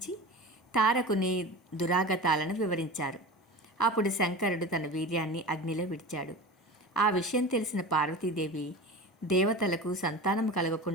తారకుని దురాగతాలను వివరించారు. అప్పుడు శంకరుడు తన వీర్యాన్ని అగ్నిలో విడిచాడు. ఆ విషయం తెలిసిన పార్వతీదేవి దేవతలకు సంతానం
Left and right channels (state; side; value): normal; both; correlation 0.32